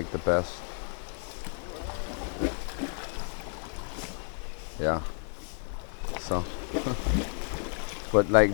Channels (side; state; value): right; silent; 55 dB below the other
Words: the best. Yeah. So. But like